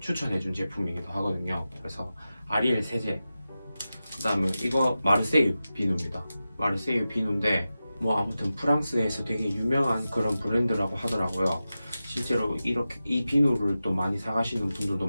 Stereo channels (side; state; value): both; inverted; correlation -0.93